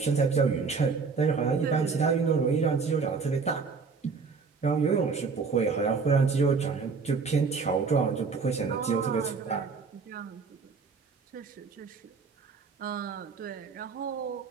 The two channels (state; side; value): quieter; left; 5.0 dB